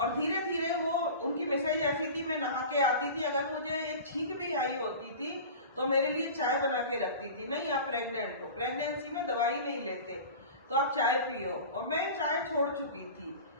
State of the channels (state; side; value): inverted; both; correlation -0.35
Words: धीरे धीरे वो, उनकी मिसेज ऐसी थी, मैं नहा के आती थी, अगर मुझे एक छींक भी आई होती थी तो मेरे लिए चाय बना के रखती थी। नहीं, आप प्रेग्नेंट हो, प्रेगनेंसी में दवाई नहीं लेते। तो आप चाय पियो, और मैं चाय छोड़ चुकी थी,